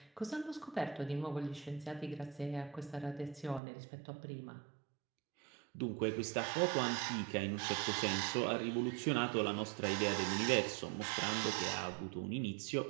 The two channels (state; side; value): drops out; left; at 3.6 s